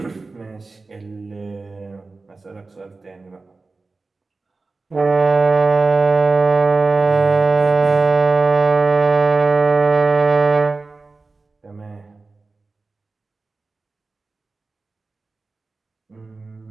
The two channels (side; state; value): left; quieter; 3.7 dB